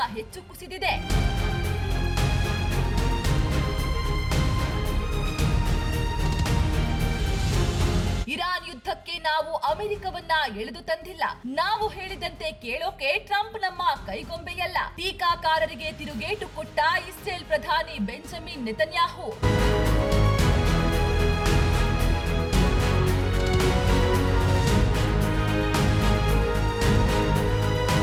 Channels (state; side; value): identical; both; correlation 1.00